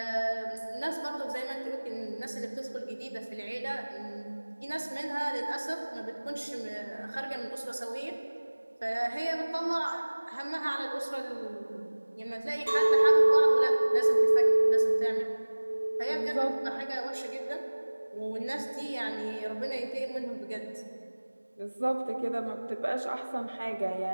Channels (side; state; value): both; inverted; correlation -1.00